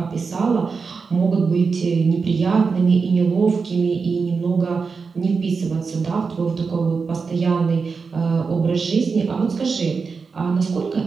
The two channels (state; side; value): quieter; left; 5.0 dB